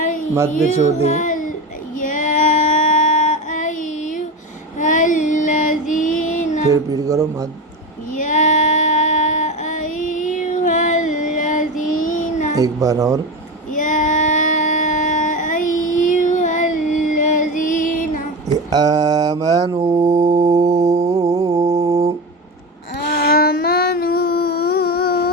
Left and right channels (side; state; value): both; normal; correlation 0.22